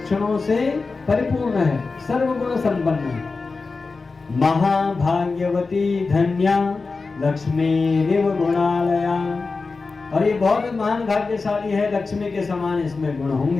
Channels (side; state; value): right; quieter; 4.1 dB